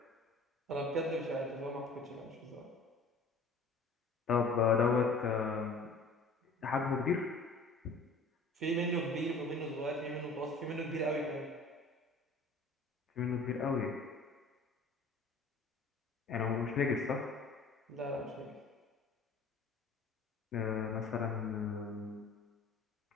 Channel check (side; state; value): right; quieter; 3.3 dB